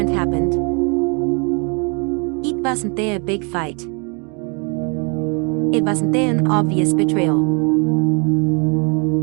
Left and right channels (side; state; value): left; quieter; 34.4 dB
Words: happened. It wasn't a big fight. It wasn't an obvious betrayal.